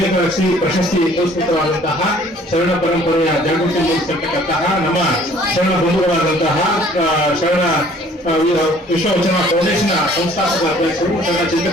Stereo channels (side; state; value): both; normal; correlation 0.56